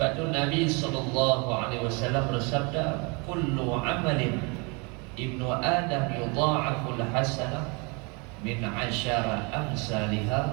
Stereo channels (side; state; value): left; quieter; 30.9 dB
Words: tu Nabi sallallahu alaihi wasallam bersabda, kullu amalin ibnu Adam yudha'aful hasanah min 'ashara